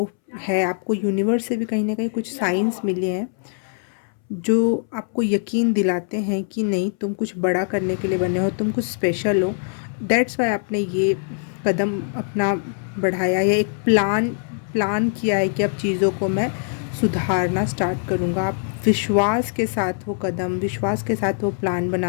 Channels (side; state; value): right; silent; 64 dB below the other